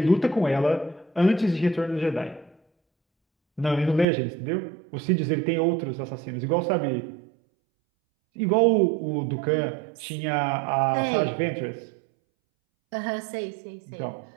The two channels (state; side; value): drops out; left; at 4.0 s